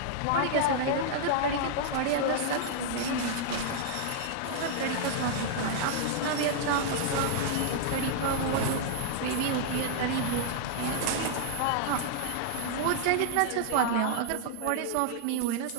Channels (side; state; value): both; different; correlation -0.01